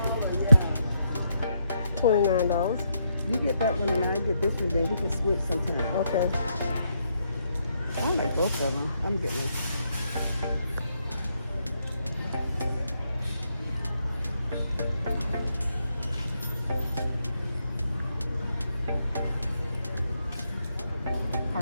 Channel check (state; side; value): inverted; both; correlation -0.78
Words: $29. You get that one and I get this one, then we can switch sometime. Okay. I like both of them. I'm getting this.